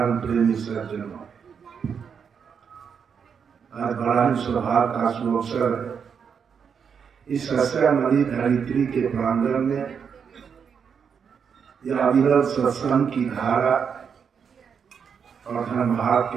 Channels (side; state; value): left; quieter; 6.8 dB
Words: प्रेमी सज्जनों, आज बड़ा ही सौभाग्य का सुअवसर इस सस्यामणि धरित्री के प्रांगण में यह अविरल सत्संग की धारा और धर्मभाग